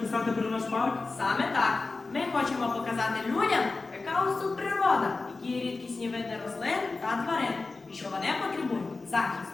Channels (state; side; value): quieter; right; 3.8 dB